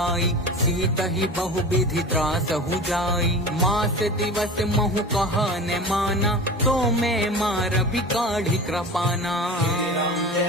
सीत ही बहु विधि त्रास हु जाई। मास दिवस महु कहा न माना, तो मैं मार भी काढ़ी कृपाना। राम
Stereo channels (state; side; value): normal; both; correlation 0.34